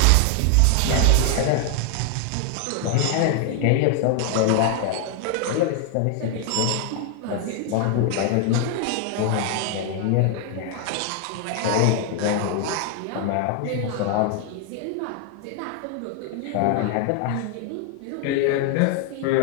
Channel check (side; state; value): both; different; correlation 0.00